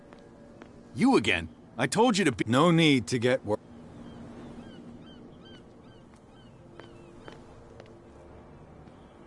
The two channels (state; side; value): identical; both; correlation 1.00